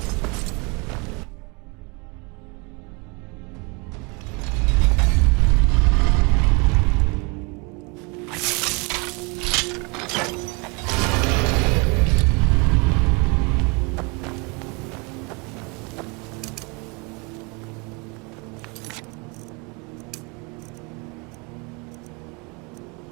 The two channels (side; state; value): left; quieter; 30.2 dB